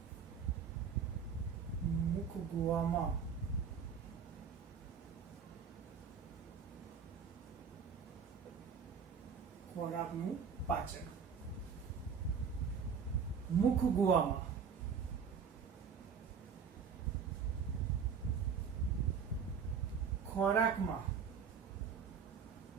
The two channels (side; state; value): left; quieter; 6.5 dB